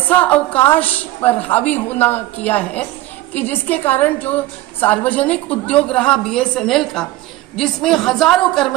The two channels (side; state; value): left; quieter; 16.6 dB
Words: अवकाश पर हावी होना किया है कि जिसके कारण जो सार्वजनिक उद्योग रहा बीएसएनएल का, जिसमें हजारों